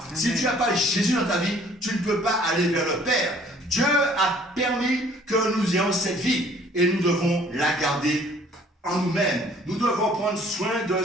Amen. Si tu n'as pas Jésus dans ta vie, tu ne peux pas aller vers le Père. Dieu a permis que nous ayons cette vie et nous devons la garder en nous-mêmes. Nous devons prendre soin de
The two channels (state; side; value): normal; both; correlation 0.57